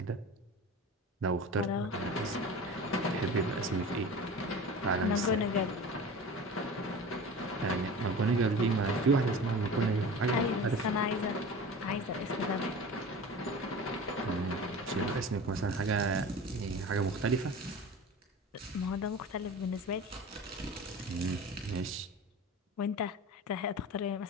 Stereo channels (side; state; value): both; normal; correlation 0.35